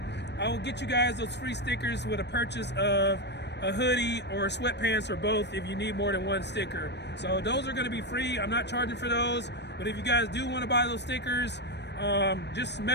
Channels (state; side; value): late; right; 0.50 ms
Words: I will get you guys those free stickers with a purchase of a hoodie or sweatpants or both if you need more than one sticker. So those are going to be free. I'm not charging for those, but if you guys do want to buy those stickers, just